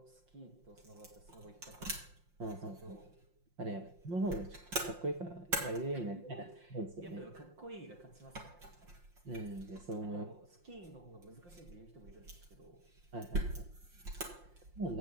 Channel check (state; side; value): late; left; 5.7 ms